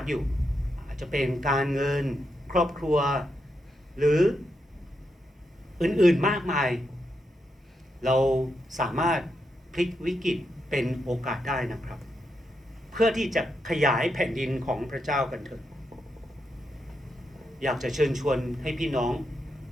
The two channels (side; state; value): both; normal; correlation 0.83